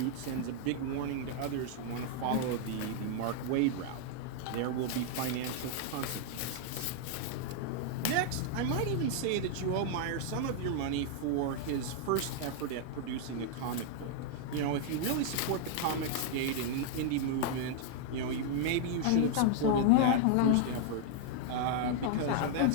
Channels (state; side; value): different; both; correlation 0.00